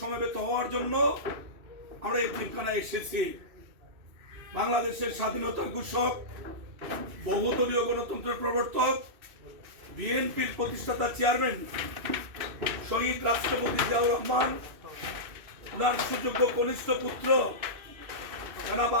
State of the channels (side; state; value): left; late; 2.6 ms